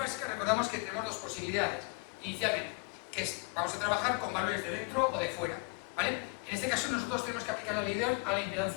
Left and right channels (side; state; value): right; quieter; 30.9 dB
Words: recordamos que tenemos 2 posibilidades inicialmente, que es, vamos a trabajar con valores de dentro o de fuera, ¿vale? En este caso nosotros tenemos que aplicar la ley de Ohm a la